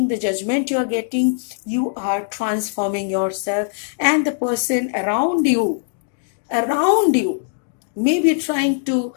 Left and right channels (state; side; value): silent; right; digital silence